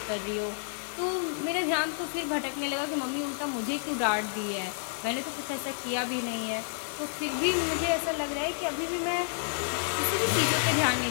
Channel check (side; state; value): right; silent; 58 dB below the other